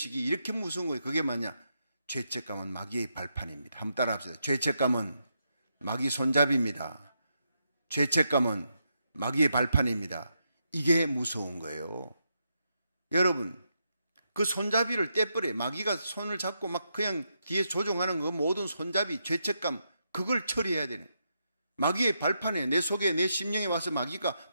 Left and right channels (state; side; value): inverted; both; correlation -0.82